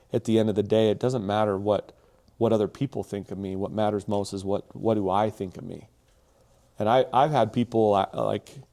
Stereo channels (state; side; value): identical; both; correlation 1.00